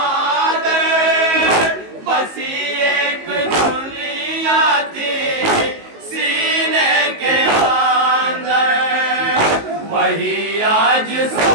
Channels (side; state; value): left; late; 19 ms